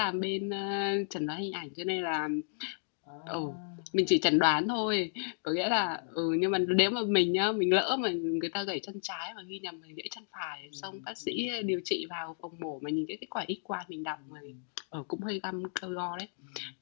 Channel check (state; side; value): silent; right; digital silence